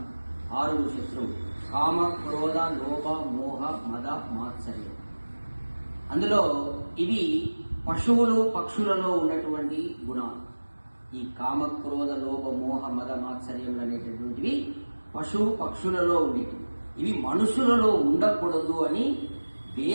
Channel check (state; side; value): inverted; both; correlation -1.00